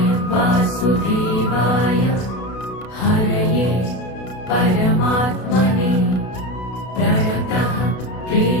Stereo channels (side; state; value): right; late; 32 ms